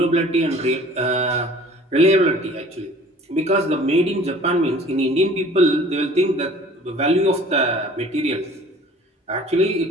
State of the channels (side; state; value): both; normal; correlation 0.49